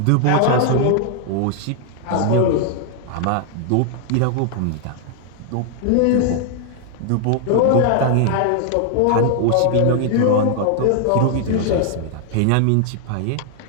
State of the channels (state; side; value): different; both; correlation 0.00